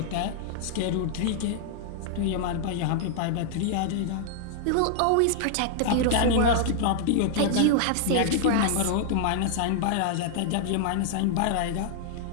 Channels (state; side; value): different; both; correlation -0.01